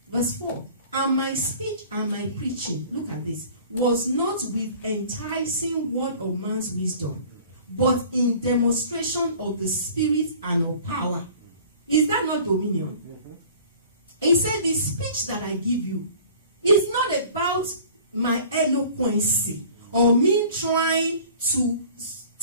Verse 4. And my speech and my preaching, look at this, was not with enticing word of man's wisdom, but in demonstration of the Spirit and of power. Is that not dominion? He said, the speech that I give you is not about my eloquency or me trying to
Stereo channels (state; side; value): inverted; both; correlation -0.47